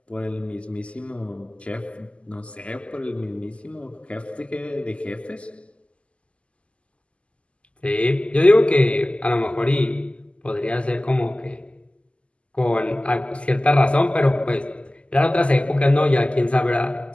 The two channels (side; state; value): right; late; 0.056 ms